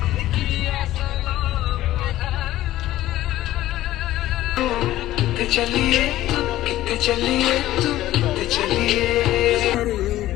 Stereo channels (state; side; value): quieter; right; 14.8 dB